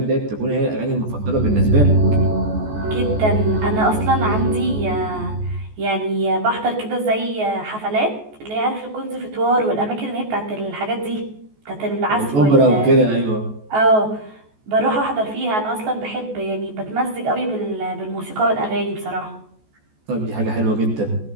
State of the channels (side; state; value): left; late; 14 ms